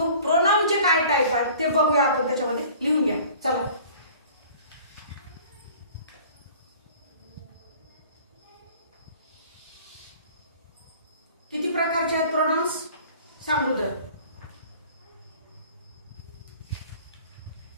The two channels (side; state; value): both; inverted; correlation -0.47